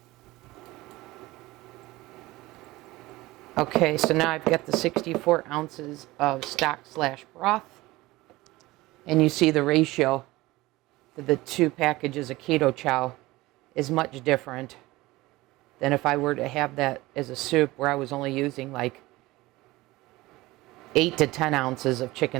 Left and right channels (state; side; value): quieter; left; 19.6 dB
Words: Okay, so now I've got the 64 ounces of stock/broth. And you see the ratio to the two packages of Keto Chow is much different than if I were to have that as a soup where I was only using like 8 to 10 ounces of